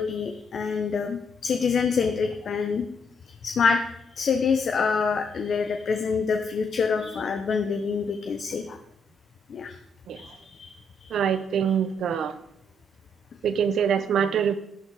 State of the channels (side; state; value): both; normal; correlation 0.73